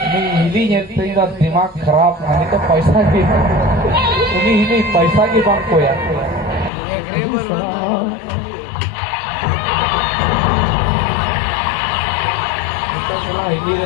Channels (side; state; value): right; drops out; at 6.7 s